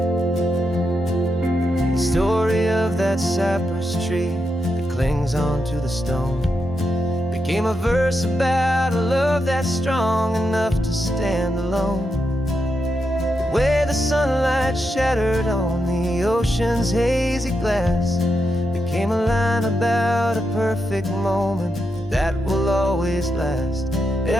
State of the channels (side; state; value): both; normal; correlation 0.85